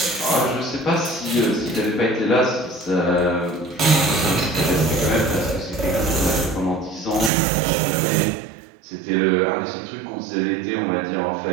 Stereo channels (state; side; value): drops out; left; at 7.3 s